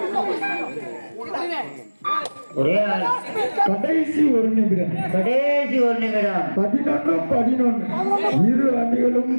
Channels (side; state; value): both; inverted; correlation -1.00